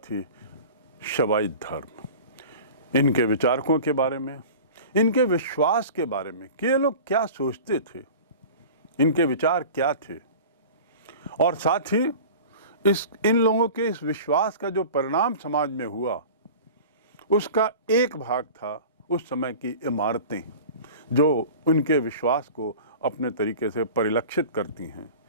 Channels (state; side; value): inverted; both; correlation -0.38